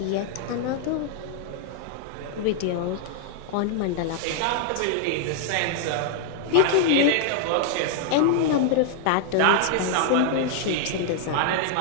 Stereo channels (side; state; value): both; different; correlation -0.01